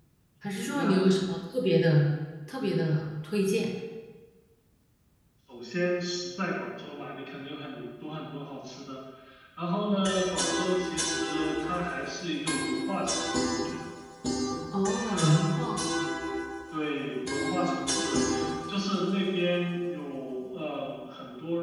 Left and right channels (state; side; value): identical; both; correlation 1.00